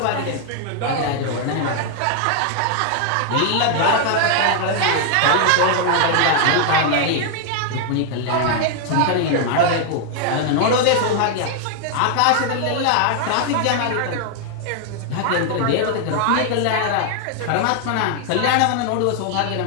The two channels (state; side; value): different; both; correlation 0.00